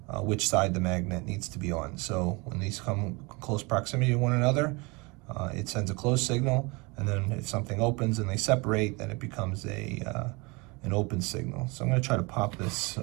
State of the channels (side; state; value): left; quieter; 27.0 dB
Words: which side the magnet needs to be on. So when these come in close proximity to one another, it sends a close signal, and then if something opens and they separate, then it becomes an open signal. So I'm going to try to pop this